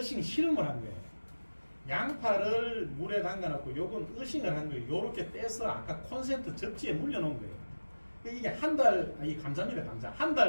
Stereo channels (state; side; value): inverted; both; correlation -1.00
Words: 실험을 한 거예요. 양파를 물에 담가놓고 요건 어싱을 한 거예요. 요렇게 떼서 아까 콘센트 접지에 물려놓은 거예요. 이게 한 달, 이 감자입니다, 감자. 한